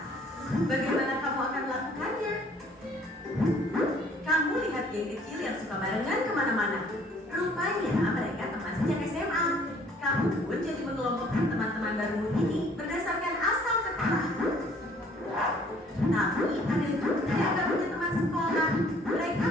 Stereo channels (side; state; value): both; normal; correlation 0.58